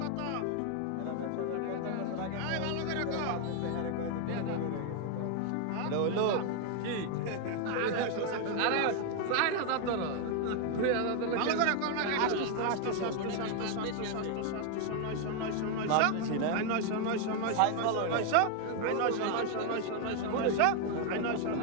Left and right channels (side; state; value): both; different; correlation 0.01